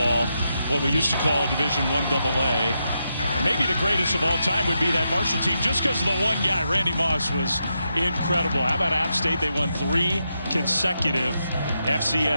what we used to call Division I AA. Maybe the greatest of all time would be that Marshall team, just because of the one guy. Randy Moss was incredible. How about App State? They won 3 consecutive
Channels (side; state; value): both; inverted; correlation -0.84